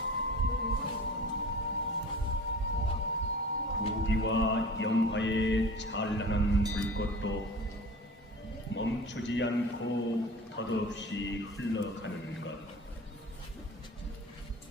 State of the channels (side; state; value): both; normal; correlation 0.40